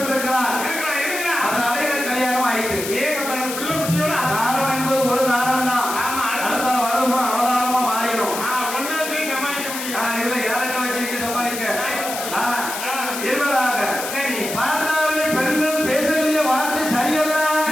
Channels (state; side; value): noise; left; hiss, 7 dB below the sound